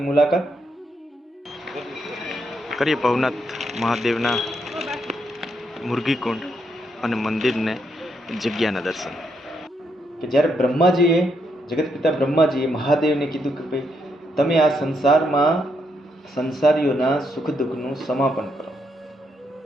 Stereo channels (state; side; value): normal; both; correlation 0.78